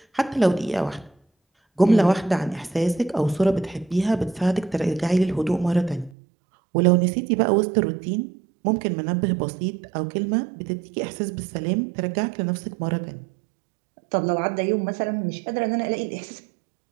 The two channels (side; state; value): left; drops out; at 6.1 s